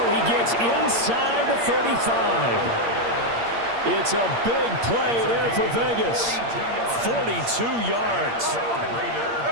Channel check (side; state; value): left; late; 8.6 ms